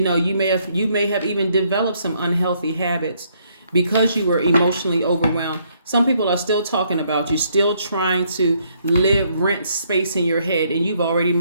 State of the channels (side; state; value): both; inverted; correlation -0.70